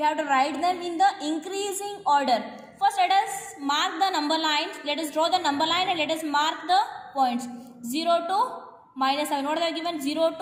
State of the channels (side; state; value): both; identical; correlation 1.00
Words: have to write them in the increasing order. First, let us mark the number lines. Let us draw the number line and let us mark the points. 0 to minus 7. What are they given? 0